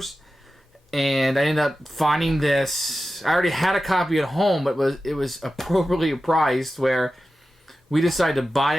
and I ended up finding this. I already had a copy at home, but it was appropriately priced, where we decided to buy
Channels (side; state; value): both; normal; correlation 0.93